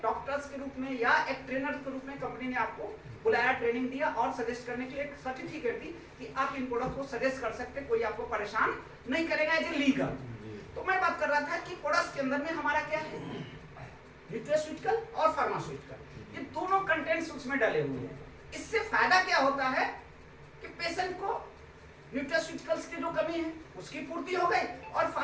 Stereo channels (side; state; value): both; identical; correlation 1.00